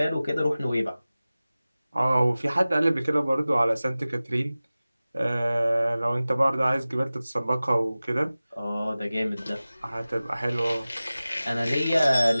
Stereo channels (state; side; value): inverted; both; correlation -0.97